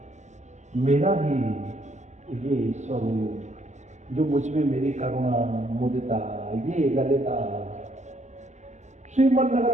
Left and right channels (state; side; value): late; left; 0.34 ms